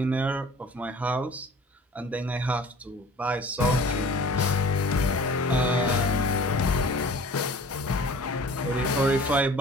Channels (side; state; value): both; normal; correlation 0.46